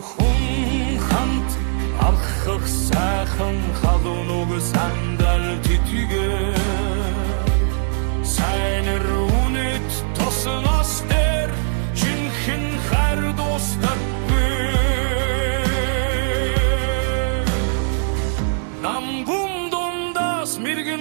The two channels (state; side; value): silent; left; 65 dB below the other